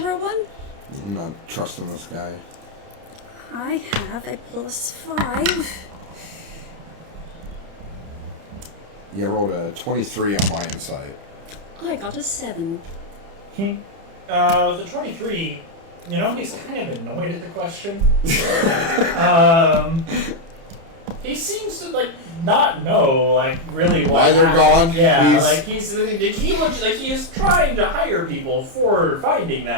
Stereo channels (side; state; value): left; late; 30 ms